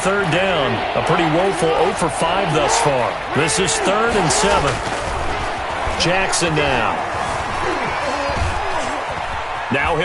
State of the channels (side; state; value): both; identical; correlation 1.00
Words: down, a pretty woeful 0 for 5 thus far. This is 3rd and 7. Jackson now. Now